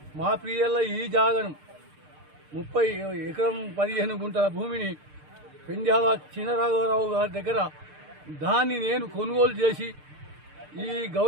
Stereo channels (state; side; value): late; left; 6.7 ms